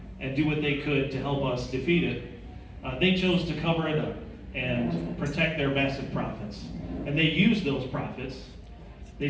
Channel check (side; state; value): both; identical; correlation 1.00